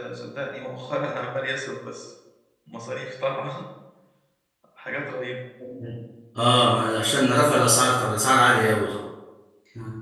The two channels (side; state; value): both; identical; correlation 1.00